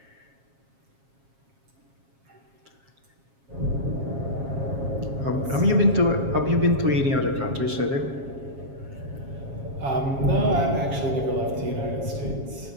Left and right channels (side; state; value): left; late; 7.3 ms